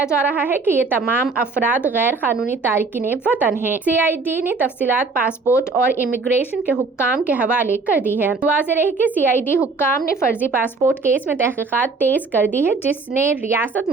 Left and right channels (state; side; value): quieter; left; 4.1 dB